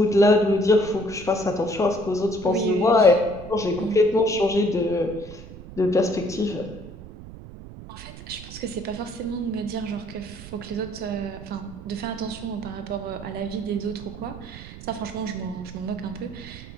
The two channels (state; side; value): noise; right; rumble, 14 dB below the sound